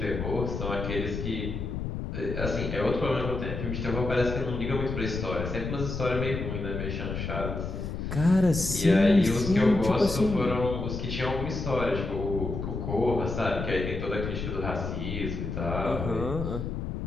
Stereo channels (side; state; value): left; noise; rumble, 4 dB below the sound